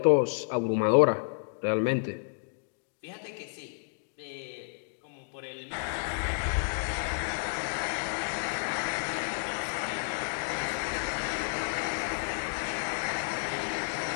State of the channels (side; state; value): right; silent; digital silence